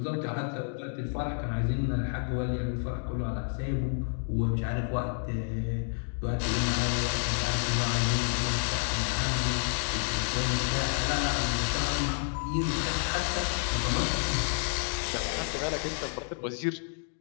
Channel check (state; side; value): silent; right; 57 dB below the other